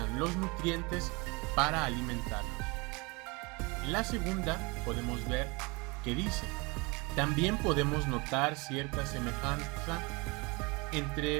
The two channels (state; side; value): quieter; left; 27.6 dB